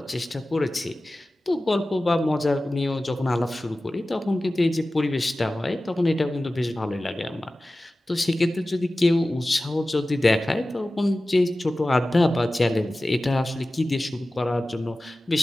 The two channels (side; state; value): both; normal; correlation 0.96